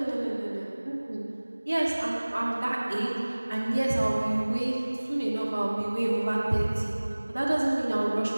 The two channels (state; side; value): inverted; both; correlation -1.00